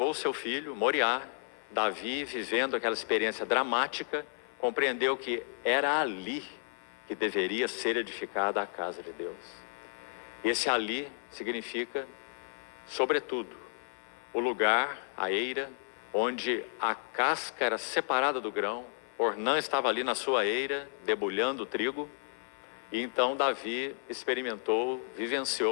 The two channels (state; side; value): silent; right; 56 dB below the other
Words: o seu filho, Moriá, Davi, vivendo aquela experiência dramática, compreendeu que era ali que deveria ser edificada a casa de Deus. E esse ali significa, sobretudo, o lugar, a eira, onde a casca era separada do grão, Ornã estava ali na sua eira, debulhando o trigo, e então Davi experimentou,